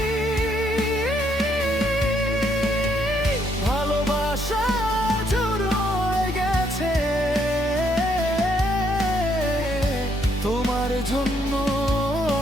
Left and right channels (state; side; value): normal; both; correlation 0.71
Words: ভালোবাসা জুড়ে গেছে তোমার জন্য